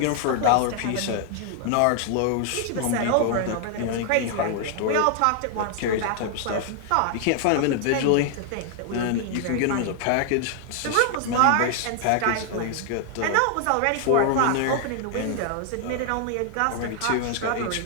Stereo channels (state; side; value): different; both; correlation 0.00